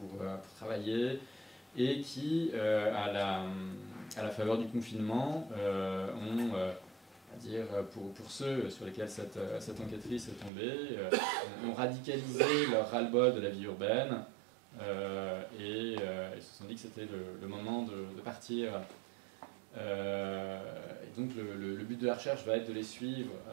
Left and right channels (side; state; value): left; drops out; at 10.5 s